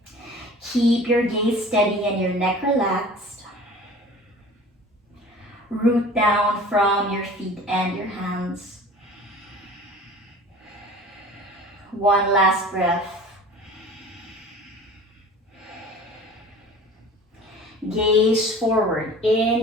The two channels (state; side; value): normal; both; correlation 0.43